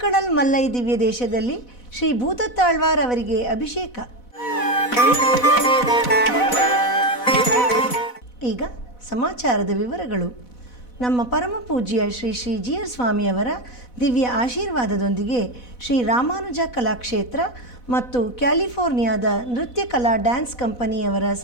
ಮಲ್ಲೈ ದಿವ್ಯ ದೇಶದಲ್ಲಿ ಶ್ರೀ ಭೂತತ್ತಾಳ್ವಾರ್ ಅವರಿಗೆ ಅಭಿಷೇಕ. ಈಗ ಸಮಾಚಾರದ ವಿವರಗಳು. ನಮ್ಮ ಪರಮ ಪೂಜ್ಯ ಶ್ರೀ ಜಿ ಆರ್ ಸ್ವಾಮಿಯವರ ದಿವ್ಯ ಆಶೀರ್ವಾದದೊಂದಿಗೆ ಶ್ರೀ ರಾಮಾನುಜ ಕಲಾಕ್ಷೇತ್ರ ಮತ್ತು ಕ್ಯಾಲಿಫೋರ್ನಿಯಾದ ನೃತ್ಯ ಕಲಾ ಡ್ಯಾನ್ಸ್ ಕಂಪನಿಯವರ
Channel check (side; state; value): right; late; 4.1 ms